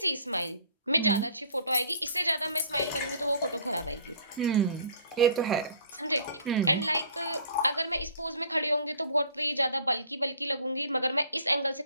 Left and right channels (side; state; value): both; inverted; correlation -0.52